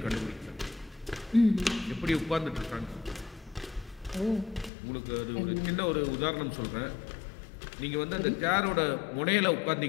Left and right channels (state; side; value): drops out; right; at 4.7 s